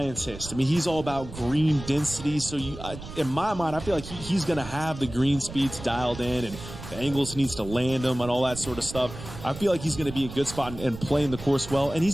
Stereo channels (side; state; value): right; noise; rumble, 12 dB below the sound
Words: I mean, he's all about green density. So in my mind, I feel like he's going to have the green speeds dialed in, and the angles he needs to land them and all that sort of stuff. I feel like he's going to be a good spot and playing the course well. And